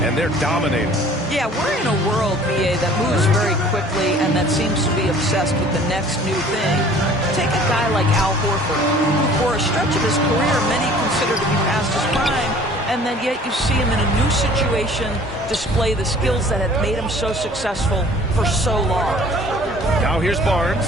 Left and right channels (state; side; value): normal; both; correlation 0.50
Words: and they're dominating. Yeah, we're in a world, BA, that moves very quickly and that seems to be obsessed with the next new thing. Take a guy like Al Horford, who for a stretch of his career many consider to be past his prime, and then yet you see him in a new situation display the skills that have made him so successful for so long. Now here's Barnes.